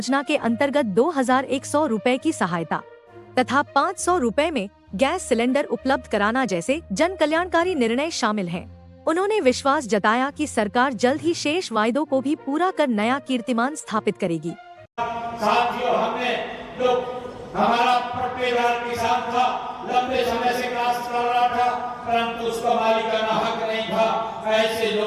के अंतर्गत 2100 रुपए की सहायता तथा 500 रुपए में गैस सिलेंडर उपलब्ध कराना जैसे जन कल्याणकारी निर्णय शामिल हैं। उन्होंने विश्वास जताया कि सरकार जल्द ही शेष वायदों को भी पूरा कर नया कीर्तिमान स्थापित करेगी। साथियों, हमने जो हमारा पट्टेदार किसान था, लंबे समय से काश्त कर रहा था, परंतु उसका मालिकाना हक नहीं था। ऐसे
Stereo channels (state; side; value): identical; both; correlation 1.00